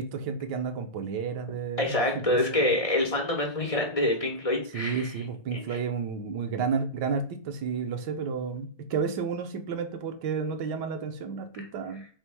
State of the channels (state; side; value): late; right; 1.6 ms